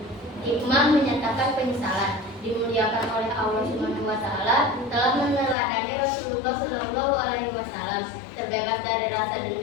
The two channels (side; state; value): right; drops out; at 5.6 s